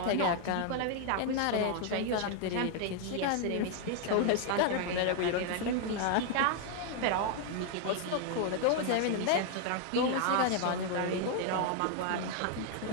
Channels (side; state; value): both; different; correlation 0.00